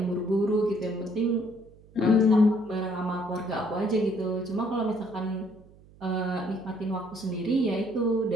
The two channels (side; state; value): right; noise; hum, 25 dB below the sound